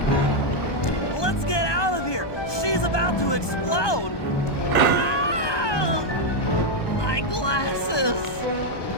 Let's get out of here. She's about to explode. Ah! My glasses.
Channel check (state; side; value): late; right; 1.2 ms